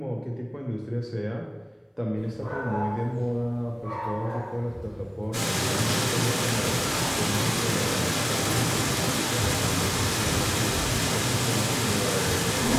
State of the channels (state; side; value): identical; both; correlation 1.00